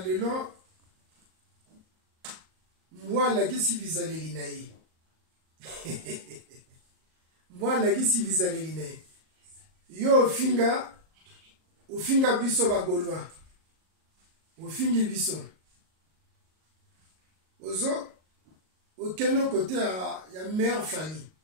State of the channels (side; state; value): left; late; 38 ms